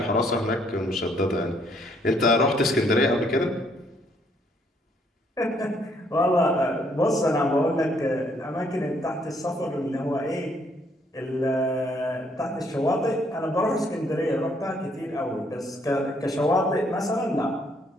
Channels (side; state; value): both; normal; correlation 0.68